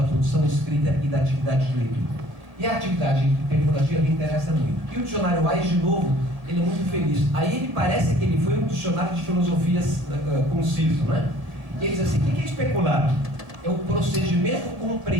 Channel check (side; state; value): left; late; 1.8 ms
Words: produção escrita e da atividade de leitura. E a atividade especulativa me interessa muito. E o dicionário Wise, de novo, ele é muito feliz. Aí ele parece que ele foi um dicionário de filosofias conciso, né? E ele diz assim, o que é especular? É o procedimento